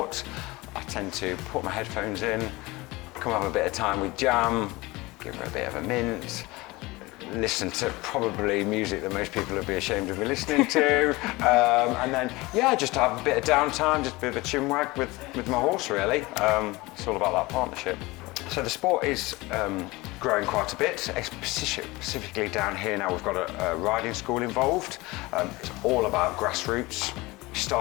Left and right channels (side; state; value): right; quieter; 21.8 dB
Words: I tend to put my headphones in, come have a bit of time with Jam, give her a bit of a mint, listen to probably music that most people would be ashamed of me listening to, and then just have a bit of downtime, just a bit of a chinwag with my horse, really. It's all about that partnership. So the sport is growing quite a bit, specifically down here now we've got a riding school involved. It's all about grassroots. You